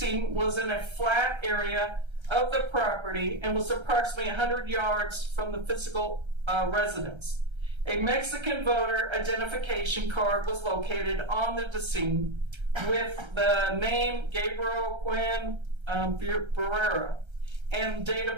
was in a flat area of the property and was approximately 100 yards from the physical residence. A Mexican voter identification card was located on the decedent with the name Gabriel Cuen Buitimea and date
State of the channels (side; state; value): left; late; 1.3 ms